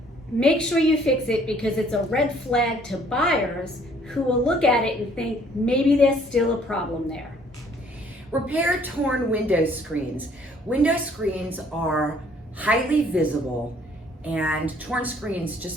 Make sure you fix it because it's a red flag to buyers who will look at it and think maybe there's still a problem there. Repair torn window screens. Window screens are highly visible, and torn screens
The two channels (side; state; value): both; normal; correlation 0.61